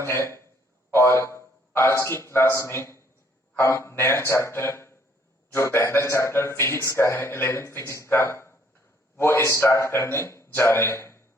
है। और आज की क्लास में हम नया चैप्टर, जो पहला चैप्टर फिजिक्स का है, 11th फिजिक्स का, वो स्टार्ट करने जा रहे हैं।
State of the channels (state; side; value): normal; both; correlation 0.64